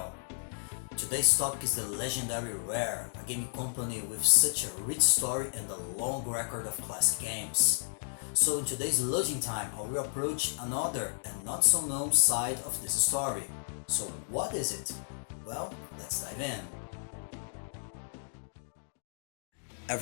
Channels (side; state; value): right; silent; digital silence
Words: Today's topic is the legendary Rare, a gaming company with such a rich story and a long record of classic games. So in today's Loading Time, I will approach another and not so known side of this story. So what is it? Well, let's dive in.